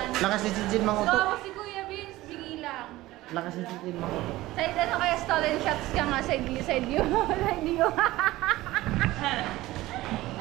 Lakas ni Jinjin mang uto. Gwapo si Kuya Vince, bingi lang. Lakas ni Jinjin mang uto. Side ano kaya stolen shots ka nga, side view. Side view.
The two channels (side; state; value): left; quieter; 17.5 dB